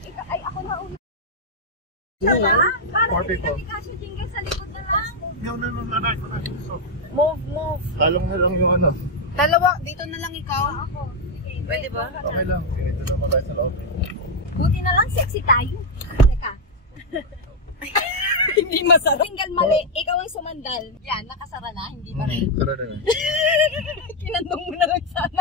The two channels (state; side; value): normal; both; correlation 0.00